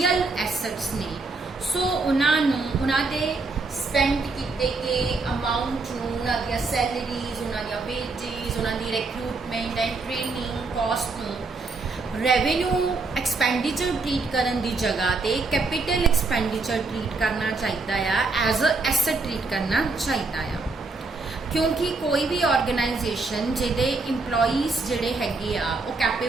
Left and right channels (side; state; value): left; quieter; 3.7 dB